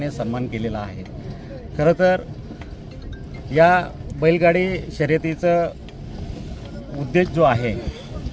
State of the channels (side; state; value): both; identical; correlation 1.00